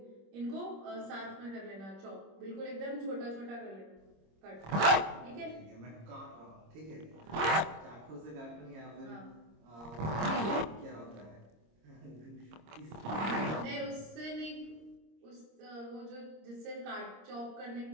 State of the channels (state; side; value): late; left; 26 ms